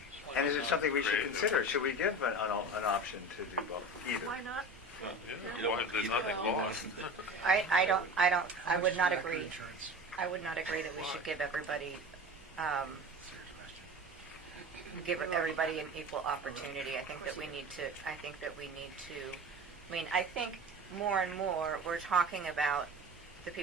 And is it something we should consider? Should we give an option to do both, either? Why not? Well, Yeah, you don't want there's either. nothing lost. I would not agree. I would not agree that we should give everybody, an equal opportunity. I think that we need to, I think more and more, we're talking about the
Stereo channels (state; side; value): normal; both; correlation 0.33